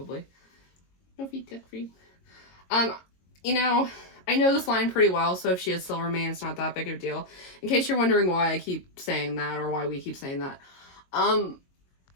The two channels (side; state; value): right; late; 22 ms